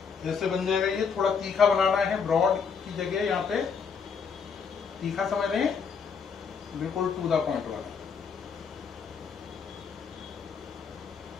जैसे बन जाएगा। ये थोड़ा तीखा बनाना है, ब्रॉड की जगह यहाँ पे तीखा, समझ रहे हैं, बिल्कुल टू द पॉइंट वाला।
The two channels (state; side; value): quieter; right; 6.1 dB